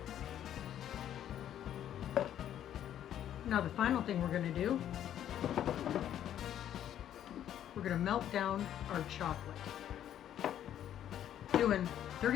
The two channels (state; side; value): quieter; right; 10.8 dB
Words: Now the final thing we're going to do, we're going to melt down our chocolate. Doing